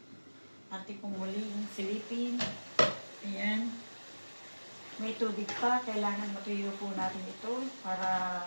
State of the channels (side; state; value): both; inverted; correlation -1.00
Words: Atin po muli yung silipin. Ayan. May tubig pa. Kailangan matuyo po natin ito para